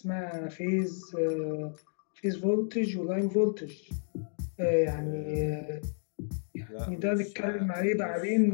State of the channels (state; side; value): silent; right; digital silence